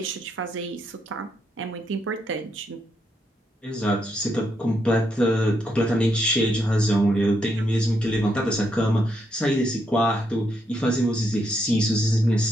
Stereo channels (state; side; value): normal; both; correlation 0.78